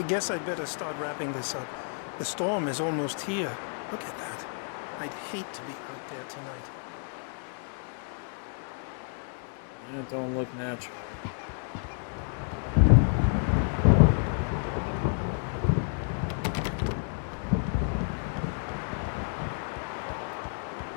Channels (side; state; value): right; silent; 58 dB below the other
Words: guess I'd better start wrapping this up. The storm is almost here. Look at that. I'd hate to be out there tonight. Yeah, it don't look natural.